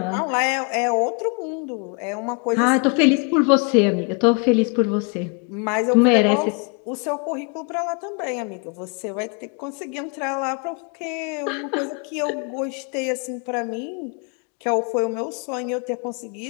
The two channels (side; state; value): right; quieter; 35.0 dB